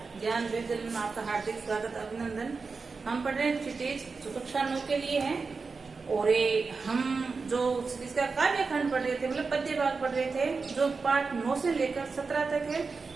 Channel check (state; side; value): quieter; left; 4.5 dB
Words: ज्ञान विद्यालय में आपका हार्दिक स्वागत अभिनंदन। हम पढ़ रहे हैं क्षितिज जो कक्षा 9 के लिए है और हम जो क्षितिज का काव्य खंड पढ़ रहे थे, मतलब पद्य भाग पढ़ रहे थे जो पाठ 9 से लेकर 17 तक है।